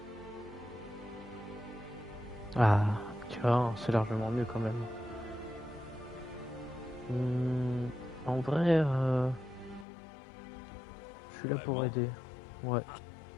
Ah, tu vois, c'est largement mieux quand même. En vrai, je suis là pour Vraiment? aider. Ouais.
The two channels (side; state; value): right; drops out; at 9.9 s